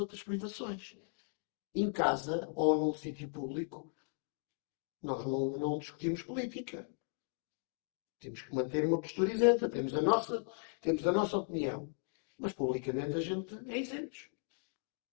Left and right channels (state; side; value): silent; right; 53 dB below the other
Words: privações. Em casa ou num sítio público, nós não discutimos política. Temos que manter uma postura isenta. Temos a nossa opinião. Mas publicamente a gente é isento.